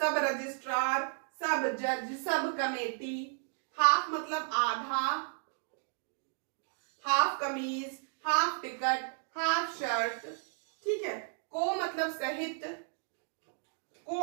रजिस्ट्रार, सब जज, सब कमेटी। हाफ मतलब आधा, हाफ कमीज, हाफ टिकट, हाफ शर्ट, ठीक है। को मतलब सहित,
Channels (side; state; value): left; silent; 55 dB below the other